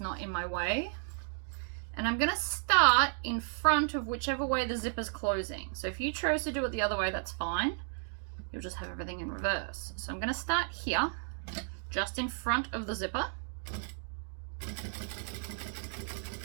not in my way. And I'm gonna start in front of whichever way the zipper's closing. So if you chose to do it the other way, that's fine. You'll just have everything in reverse. So I'm gonna start here, just in front of the zipper.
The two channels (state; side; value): silent; left; 55 dB below the other